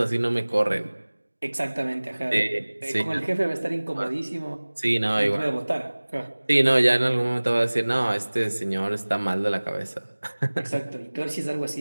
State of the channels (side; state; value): both; inverted; correlation -1.00